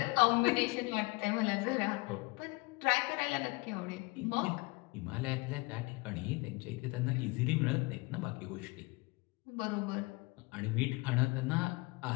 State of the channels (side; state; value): right; quieter; 25.6 dB